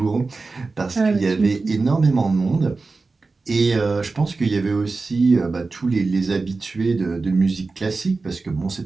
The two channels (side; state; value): left; quieter; 3.9 dB